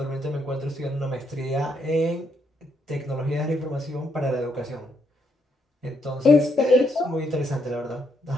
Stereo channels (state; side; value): normal; both; correlation 0.75